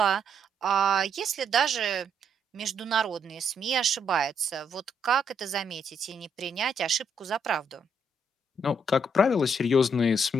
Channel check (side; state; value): both; normal; correlation 0.73